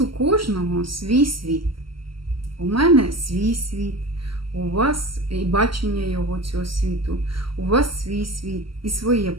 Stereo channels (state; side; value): late; left; 0.74 ms